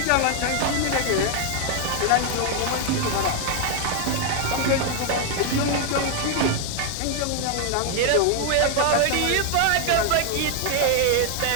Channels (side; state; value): both; different; correlation 0.00